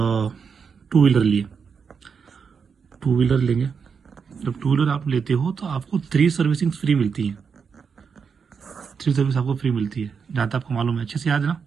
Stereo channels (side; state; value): left; quieter; 6.1 dB